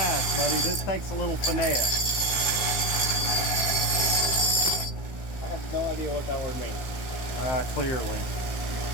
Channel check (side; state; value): right; late; 15 ms